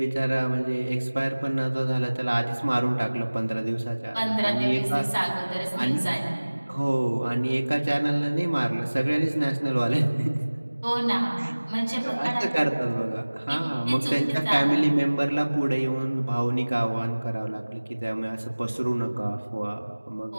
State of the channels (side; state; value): both; inverted; correlation -1.00